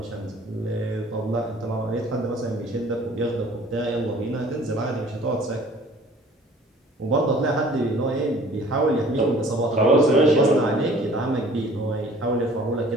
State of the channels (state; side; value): normal; both; correlation 0.51